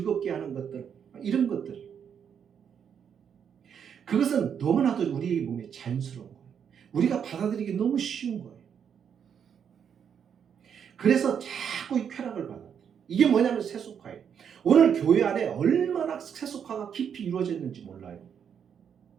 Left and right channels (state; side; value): quieter; left; 7.8 dB